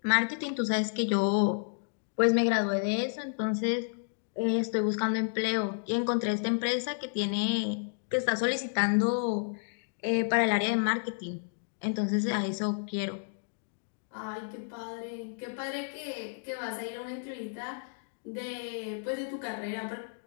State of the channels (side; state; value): right; silent; digital silence